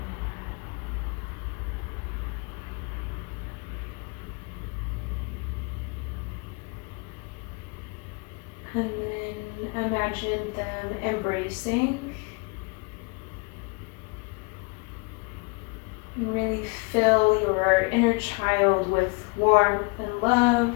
And then imagine them embracing. Really fill your inner child with warmth and love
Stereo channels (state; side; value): quieter; right; 30.3 dB